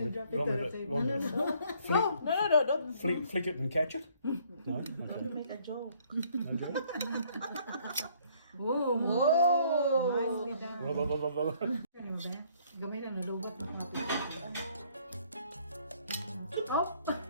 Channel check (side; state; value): both; inverted; correlation -0.62